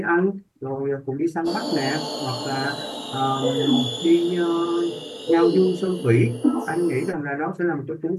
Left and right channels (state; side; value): identical; both; correlation 1.00